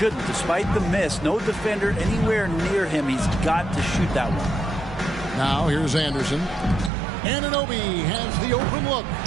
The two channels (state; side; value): drops out; left; at 6.9 s